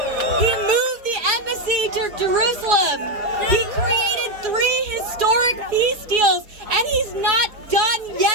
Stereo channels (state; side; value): late; left; 4.8 ms